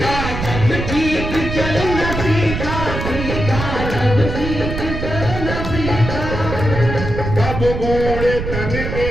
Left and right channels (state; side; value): noise; right; rumble, 5 dB below the sound